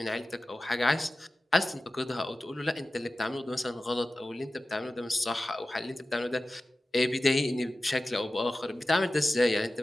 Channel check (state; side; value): normal; both; correlation 0.95